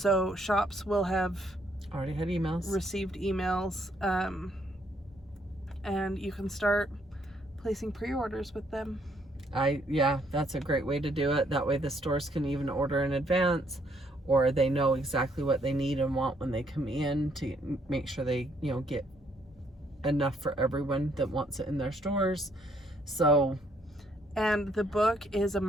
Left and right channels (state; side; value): normal; both; correlation 0.70